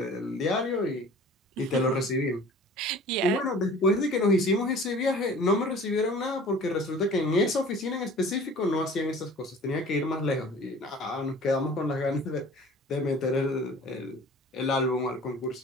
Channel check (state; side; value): normal; both; correlation 0.45